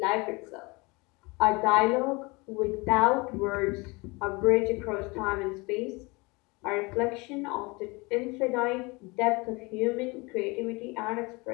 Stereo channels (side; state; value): right; quieter; 26.2 dB